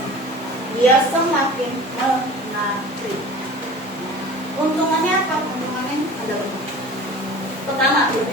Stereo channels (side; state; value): both; normal; correlation 0.40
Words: Dia semakin menarik. Untungannya apa? Untungannya ada banyak. Pertama,